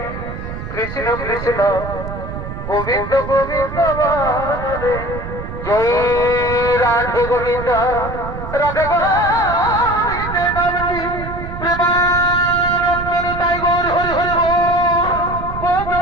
কৃষ্ণ কৃষ্ণ গোবিন্দ গোবিন্দ রাধে জয় রাধে গোবিন্দ রাধে গোবিন্দে নামটি প্রেমানন্দে তাই গৌর হরি হরি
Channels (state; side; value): noise; right; rumble, 8 dB below the sound